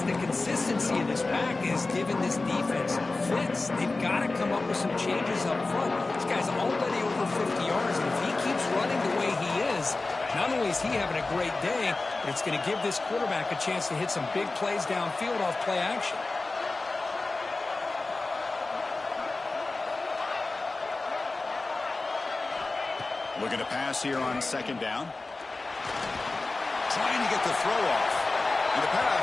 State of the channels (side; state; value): right; quieter; 3.4 dB